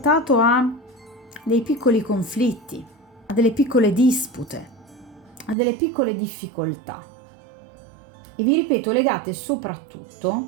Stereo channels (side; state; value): left; drops out; at 5.6 s